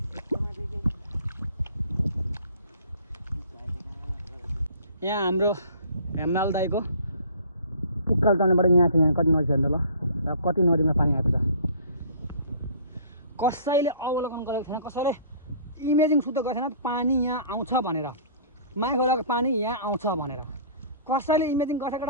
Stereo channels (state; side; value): inverted; both; correlation -0.49